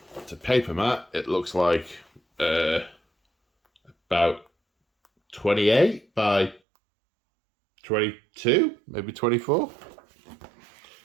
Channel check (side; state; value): left; drops out; at 6.6 s